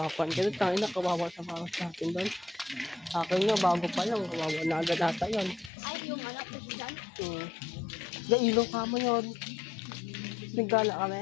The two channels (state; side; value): drops out; right; at 5.7 s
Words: Ganun tayo na kawawa sa para sa atin doon. Akin nga, bago pa lang. Kawawa na agad ata yun. Ay, yung anak ko dyan. Ilaw ka mo yun. Nagala kami.